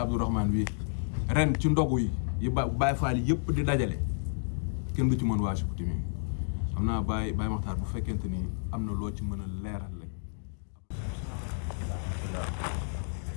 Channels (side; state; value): right; silent; digital silence